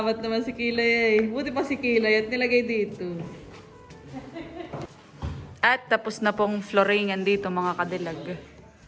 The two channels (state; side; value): identical; both; correlation 1.00